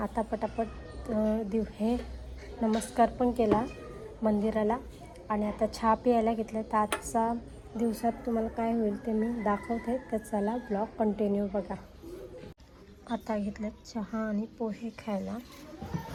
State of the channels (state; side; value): identical; both; correlation 1.00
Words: आता पटापट हे नमस्कार पण केला मंदिराला आणि आता चहा प्यायला घेतलं. तर आजचा दिवसात तुम्हाला काय होईल ते मी दाखवते. तर चला ब्लॉग कंटिन्यू बघा. आता घेतलं चहा आणि पोहे खायला.